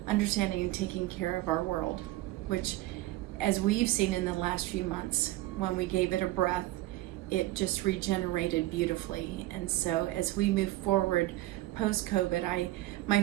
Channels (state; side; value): quieter; left; 17.2 dB